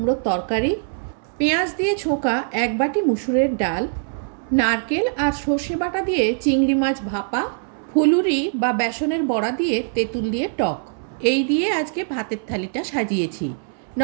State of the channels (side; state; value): left; silent; 64 dB below the other